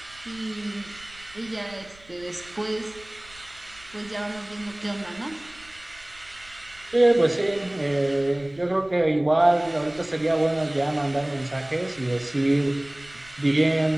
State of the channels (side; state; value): right; noise; rumble, 24 dB below the sound